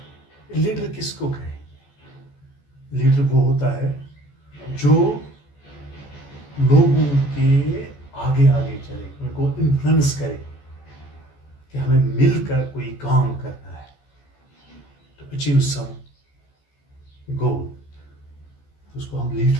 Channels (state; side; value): late; right; 14 ms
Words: लीडर किसको कहें? लीडर वो होता है जो लोगों के आगे आगे चले, उनको इन्फ्लुएंस करे कि हमें मिलकर कोई काम करना है टू अचीव सम गोल, तो उसको हम